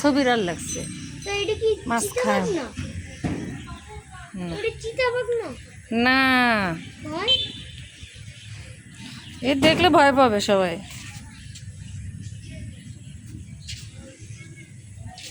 বিড়াল লাগছে। মাছ খায় না? এ দেখলে ভয় পাবে সবাই।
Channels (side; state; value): both; identical; correlation 1.00